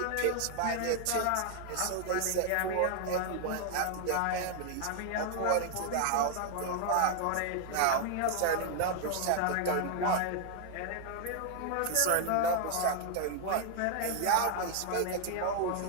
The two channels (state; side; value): different; both; correlation 0.00